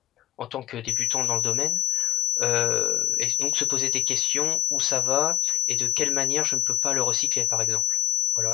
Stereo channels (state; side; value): quieter; right; 12.5 dB